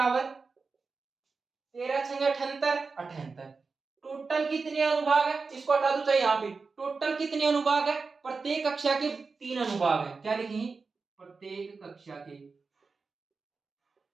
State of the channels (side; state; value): left; quieter; 4.5 dB